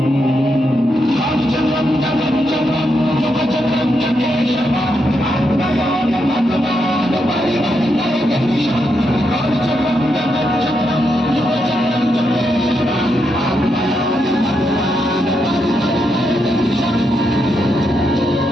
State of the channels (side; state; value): both; normal; correlation 0.82